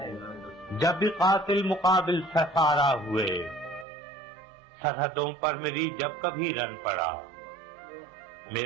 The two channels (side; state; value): left; drops out; at 3.9 s